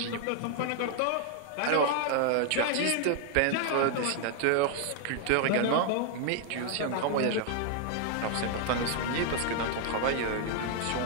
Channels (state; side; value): different; both; correlation 0.00